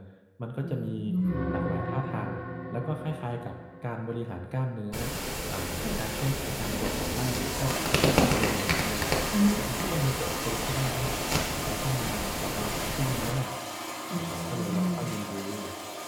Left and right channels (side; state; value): both; identical; correlation 1.00